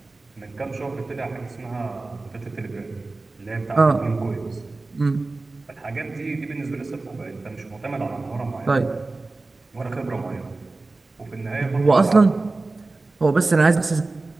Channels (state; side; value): quieter; left; 3.4 dB